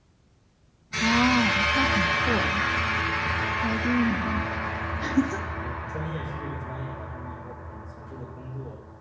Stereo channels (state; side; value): identical; both; correlation 1.00